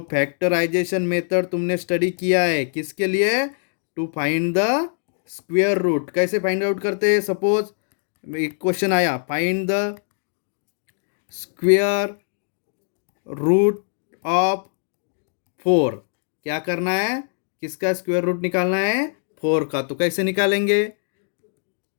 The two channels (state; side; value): silent; right; digital silence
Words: फैक्टराइजेशन मेथड तुमने स्टडी किया है, किसके लिए, to find the square root. कैसे फाइंड आउट करते हैं, सपोज एक क्वेश्चन आया, find the square root of 4, क्या करना है, किसका स्क्वायर रूट निकालना है, 4 का। तो कैसे निकालेंगे,